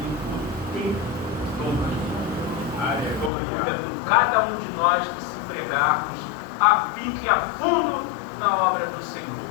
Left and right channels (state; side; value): drops out; right; at 3.3 s